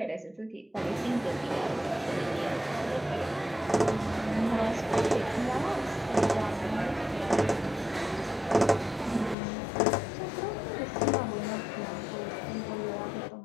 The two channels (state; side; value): drops out; right; at 9.3 s